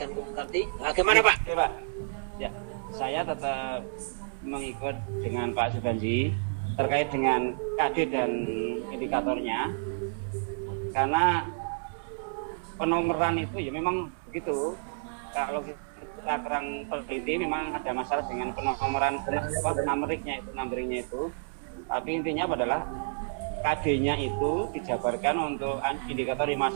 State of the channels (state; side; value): silent; left; digital silence